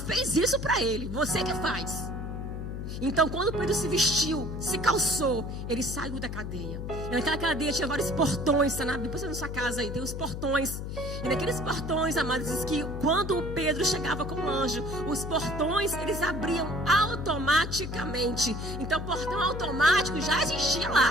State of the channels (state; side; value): noise; left; hum, 6 dB below the sound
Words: isso para ele. Você que faz. Então, quando Pedro se vestiu, se calçou, ele saiu da cadeia. E naquela cadeia tinha vários portões, tá? Depois na sua casa aí, tem os portões. E naqueles portões, amados, diz que quando Pedro chegava com o anjo, os portões, eles abriam automaticamente. Então, portão automático já existia